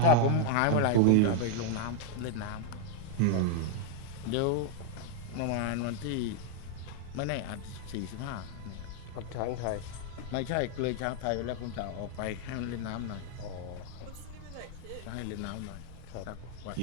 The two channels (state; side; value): different; both; correlation 0.00